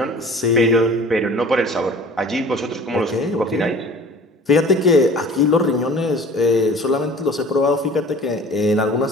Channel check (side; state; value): both; normal; correlation 0.45